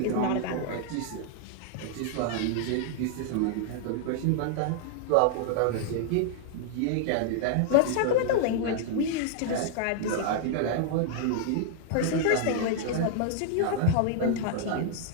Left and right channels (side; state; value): both; different; correlation 0.00